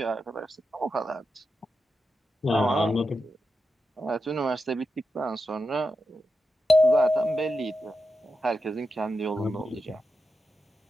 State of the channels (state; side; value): normal; both; correlation 0.88